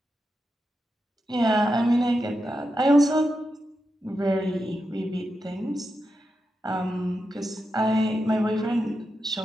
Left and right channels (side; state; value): both; normal; correlation 0.88